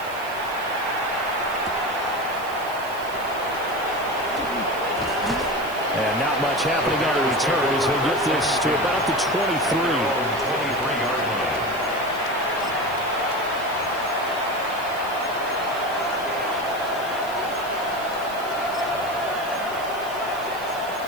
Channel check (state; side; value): noise; right; hiss, 17 dB below the sound